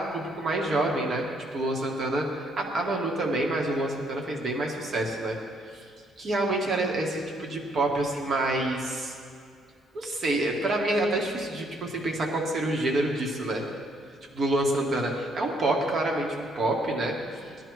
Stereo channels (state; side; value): normal; both; correlation 0.69